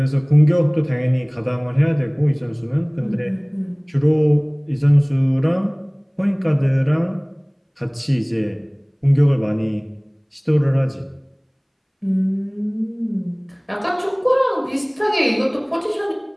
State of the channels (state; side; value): identical; both; correlation 1.00